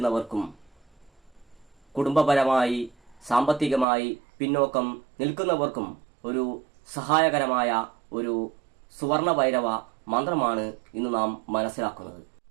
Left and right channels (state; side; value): drops out; left; at 3.9 s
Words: കുടുംബപരമായി സാമ്പത്തികമായി പിന്നോക്കം നിൽക്കുന്നവർക്കും ഒരു സഹായകരമായ ഒരു സുവർണ ഭൈരവ മന്ത്രമാണ് ഇന്ന് നാം മനസ്സിലാക്കുന്നത്.